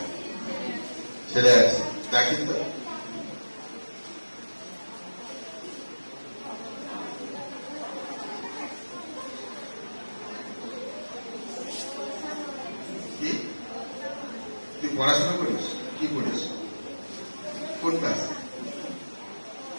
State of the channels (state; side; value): inverted; both; correlation -1.00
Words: ছেলে আছে, দেখেন তো। কি তুই পড়াশোনা করিস? কি করিস? কোন ক্লাস?